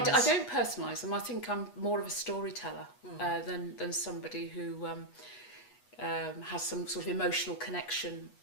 don't personalise them. I think I'm more of a storyteller than somebody who. Has some sort of emotional connection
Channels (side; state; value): right; late; 8.3 ms